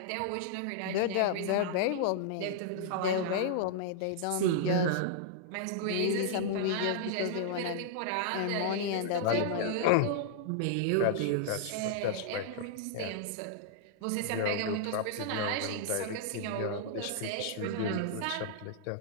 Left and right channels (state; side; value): different; both; correlation -0.01